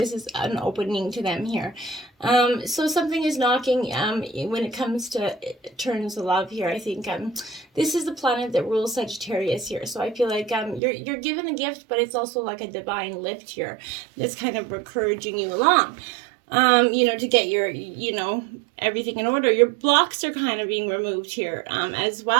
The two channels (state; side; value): drops out; left; at 10.8 s